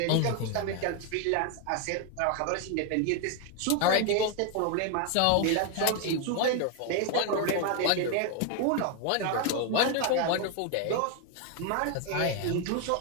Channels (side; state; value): both; different; correlation 0.01